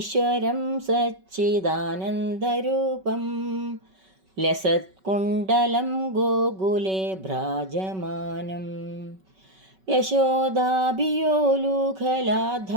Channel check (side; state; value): left; late; 5.3 ms